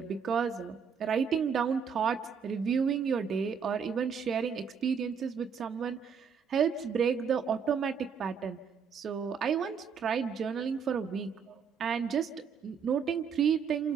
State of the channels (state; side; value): quieter; left; 6.6 dB